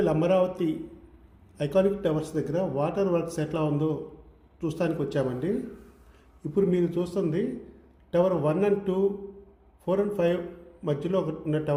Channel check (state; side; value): identical; both; correlation 1.00